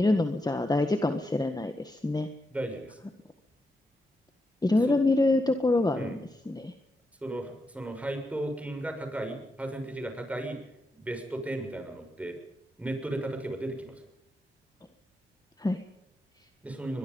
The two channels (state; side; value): normal; both; correlation 0.84